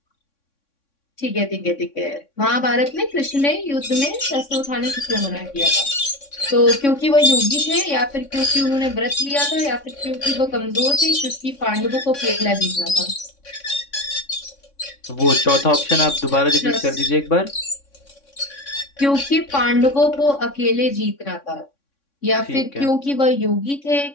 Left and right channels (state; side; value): late; right; 3.6 ms